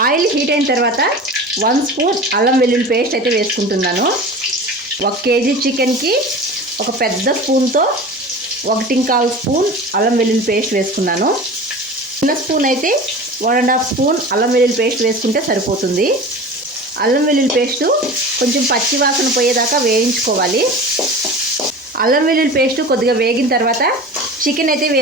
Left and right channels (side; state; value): both; normal; correlation 0.35